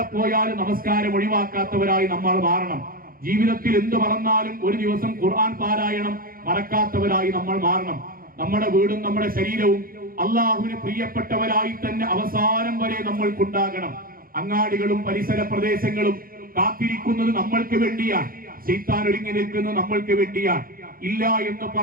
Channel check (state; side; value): late; left; 0.42 ms